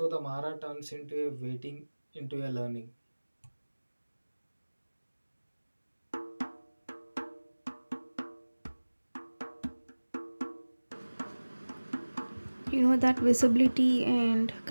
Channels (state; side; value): inverted; both; correlation -1.00